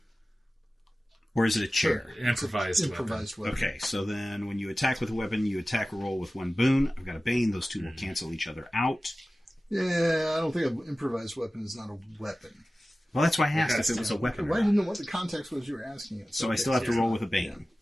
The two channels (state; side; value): normal; both; correlation 0.96